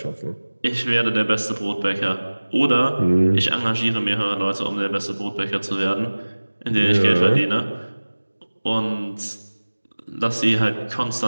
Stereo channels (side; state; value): both; inverted; correlation -1.00